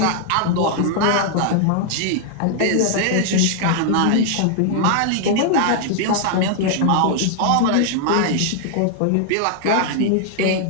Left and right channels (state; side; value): different; both; correlation 0.00